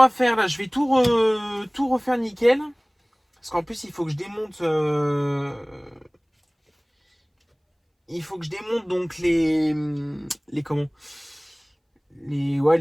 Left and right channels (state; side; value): identical; both; correlation 1.00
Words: faire, là, je vais tout refaire nickel. Parce qu'en plus, il faut que je démonte... il faut que je démonte donc les comment